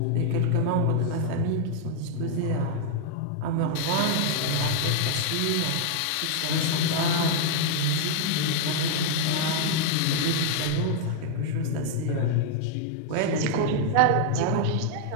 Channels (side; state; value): both; different; correlation 0.00